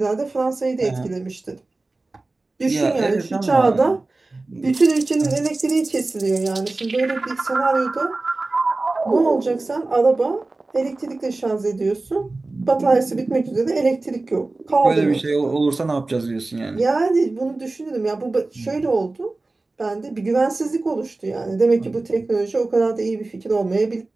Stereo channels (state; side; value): quieter; left; 3.2 dB